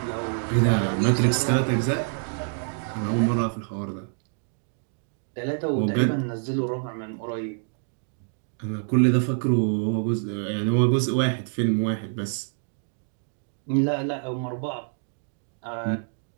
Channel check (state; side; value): silent; left; 61 dB below the other